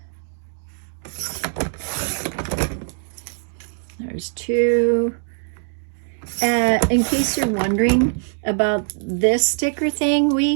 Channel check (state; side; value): silent; left; digital silence